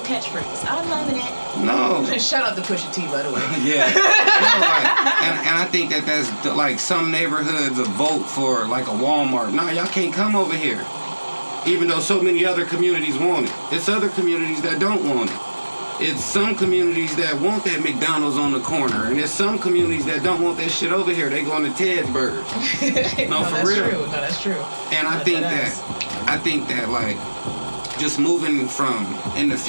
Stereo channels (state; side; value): inverted; both; correlation -1.00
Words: catchphrase. I'm loving it. No. Shout out to Pusha T, by the way. Yeah. No, like, and I think that's like some neighborhoods a vote for like a Walmart. No, y'all can't come over here. Even though so many other communities want it. It's other communities that don't want it. It's some communities that want that McDonald's on the corner, and there's some communities that don't want that shit over here. They going to Ted's Burgers. No, for that's real. True. No, that's true. And I think that like just moving from in the